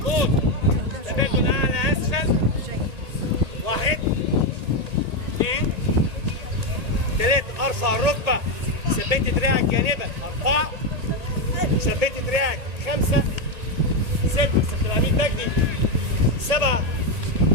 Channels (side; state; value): left; late; 1.8 ms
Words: تبادل اعلى اسفل. 1 2 3 ارفع الركبة، ثبت دراعك جانبا. 4 ثبت دراعك. 5 6 سيد العميد مجدي. 7